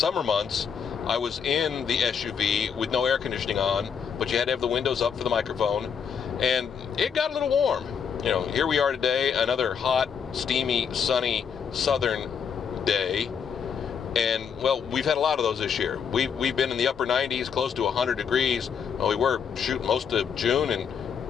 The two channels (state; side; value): quieter; right; 7.0 dB